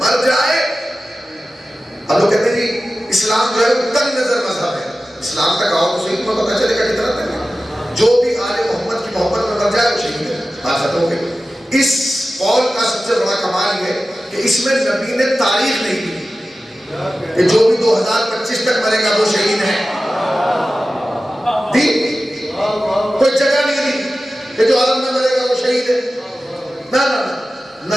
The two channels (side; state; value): both; normal; correlation 0.95